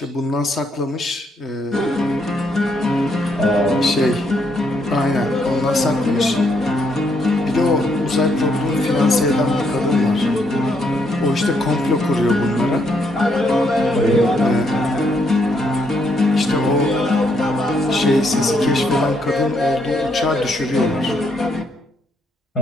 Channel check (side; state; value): both; normal; correlation 0.74